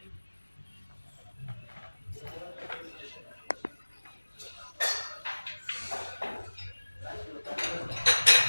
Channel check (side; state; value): both; inverted; correlation -1.00